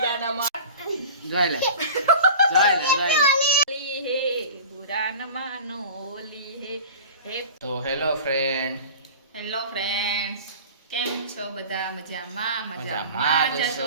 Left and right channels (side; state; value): both; inverted; correlation -0.38